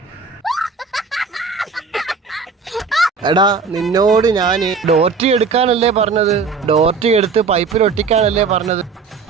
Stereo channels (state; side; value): quieter; left; 5.0 dB